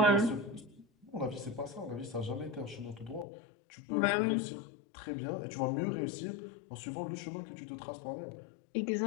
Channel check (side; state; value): right; drops out; at 3.2 s